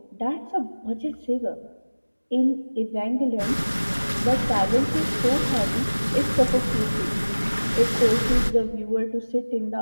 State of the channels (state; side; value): inverted; both; correlation -1.00